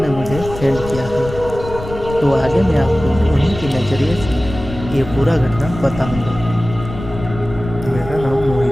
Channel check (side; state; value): left; noise; rumble, 11 dB below the sound